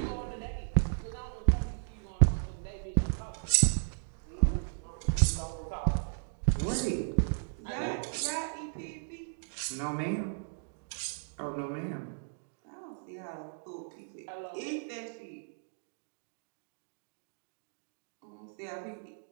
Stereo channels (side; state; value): left; silent; digital silence